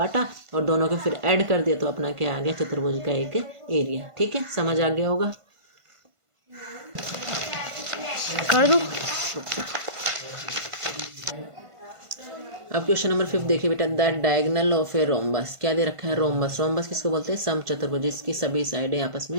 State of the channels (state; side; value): late; left; 1.5 ms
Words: और दोनों को फिर ऐड कर दिया, तो अपना क्या आ गया चतुर्भुज का एक एरिया। ठीक है, समझ आ गया होगा, कर दो। अब क्वेश्चन नंबर 5 देखिए बेटा, the diagonal of a rhombus, क्या दे रखा है रोम्बस, रोम्बस किसको बोलते हैं, समचतुर्भुज जिसकी सभी साइडें आपस